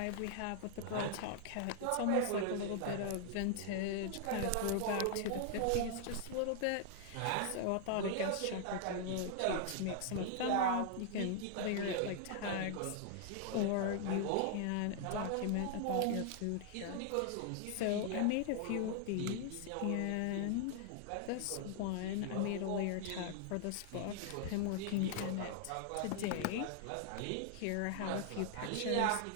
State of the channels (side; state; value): both; different; correlation 0.00